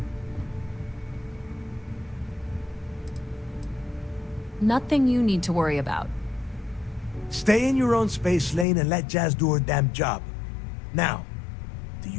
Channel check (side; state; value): right; drops out; at 8.7 s